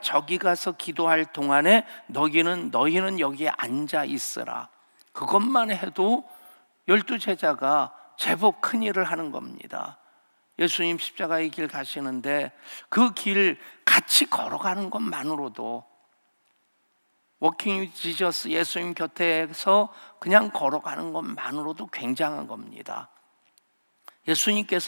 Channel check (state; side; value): inverted; both; correlation -1.00